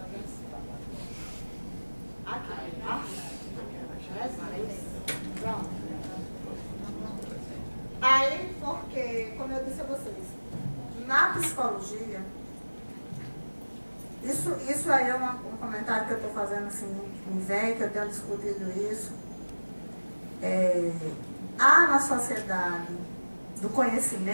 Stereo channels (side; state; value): both; inverted; correlation -1.00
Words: vendo? Aqui, tá? Pronto. Aí, porque, como eu disse a vocês, na psicologia, isso aí é um comentário que eu estou fazendo assim, me vem, que eu tenho discutido isso. Há na sociedade do